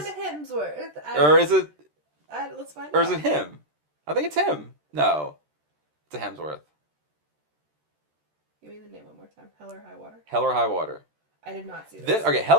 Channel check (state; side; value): late; left; 13 ms